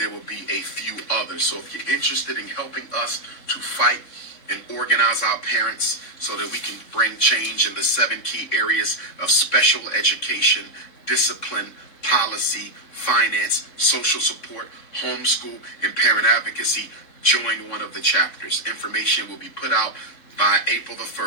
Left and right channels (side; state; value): right; late; 3.6 ms